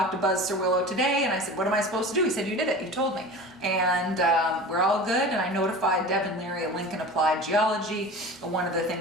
to Buzz Cerwillo today and I said, what am I supposed to do? He said, you did it, you told me. And we're all good, and I notified Devin Leary at Lincoln Applied Geology. One of the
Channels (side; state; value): both; normal; correlation 0.35